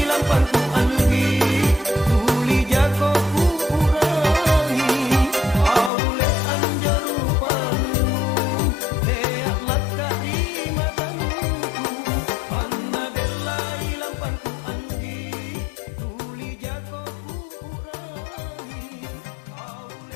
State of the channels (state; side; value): drops out; right; at 5.9 s